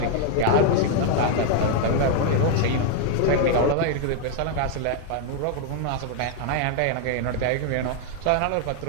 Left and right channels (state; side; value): different; both; correlation 0.00